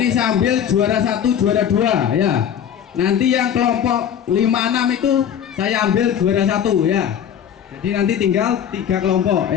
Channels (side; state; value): right; quieter; 9.0 dB